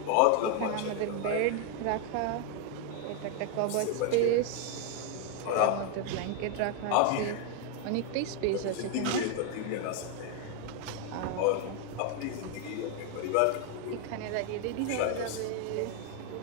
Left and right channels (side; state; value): both; different; correlation 0.01